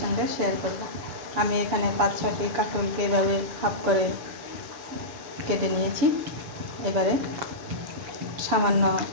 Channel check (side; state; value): left; late; 7.0 ms